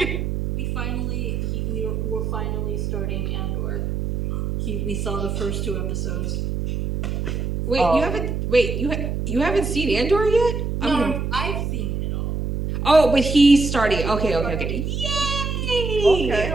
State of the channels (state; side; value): noise; right; hum, 2 dB below the sound